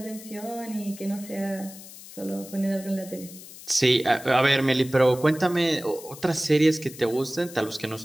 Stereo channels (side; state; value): left; noise; hiss, 16 dB below the sound